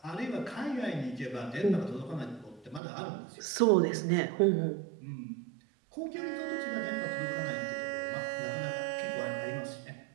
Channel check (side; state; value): left; drops out; at 2.8 s